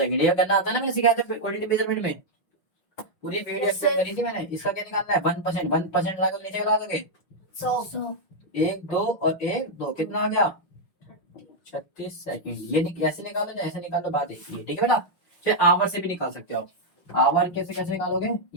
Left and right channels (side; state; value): right; late; 5.9 ms